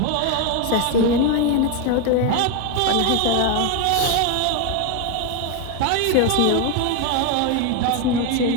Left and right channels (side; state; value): both; different; correlation 0.02